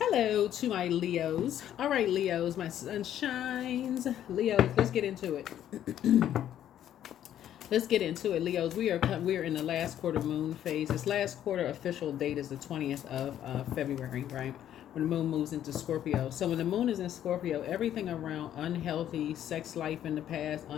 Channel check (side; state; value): right; quieter; 11.0 dB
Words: to my Leos. All right, Leos, my sunshines. Leos, let's get into it. Let's get into it, Leos. We are in the last quarter moon phase. This last quarter official date is the 20th of February, right? When the moon moves into Scorpio. So when the moon is in Scorpio, everything around unhealthy sex life in the past,